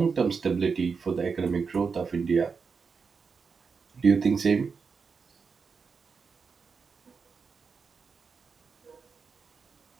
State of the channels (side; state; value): left; quieter; 5.4 dB